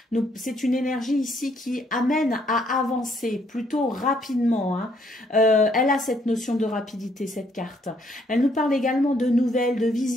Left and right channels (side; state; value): both; normal; correlation 0.69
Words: C'est une énergie ici qui amène à avancer plutôt rapidement. Hein. Elle a cette notion de rapidité, cette carte. Elle nous parle également de nouvelles, de